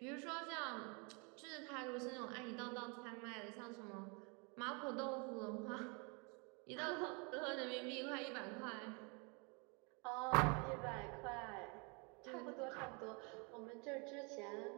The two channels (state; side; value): quieter; left; 32.6 dB